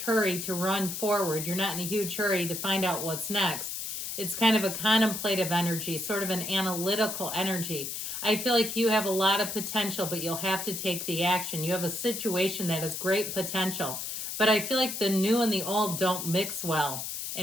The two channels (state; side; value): noise; left; hiss, 5 dB below the sound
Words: hurry to run forward. You're not in a huge hurry to find out what's next. It's kind of a contemplative energy, sort of an analytical energy. I feel like you have a lot of potential, but you'll have to take the action. You have a situation that has great potential. But I feel like the new and the old don't mix well